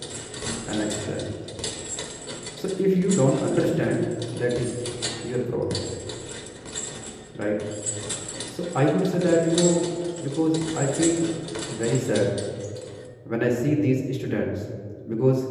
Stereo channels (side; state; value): both; identical; correlation 1.00